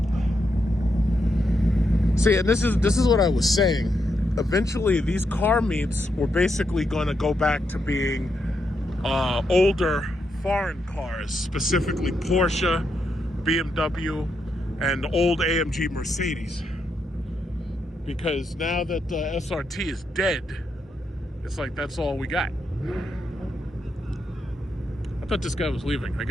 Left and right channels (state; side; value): normal; both; correlation 0.82